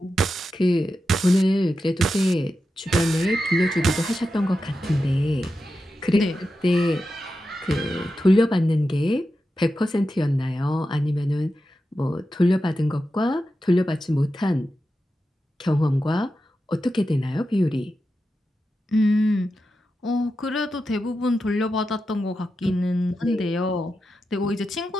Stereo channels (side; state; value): both; normal; correlation 0.90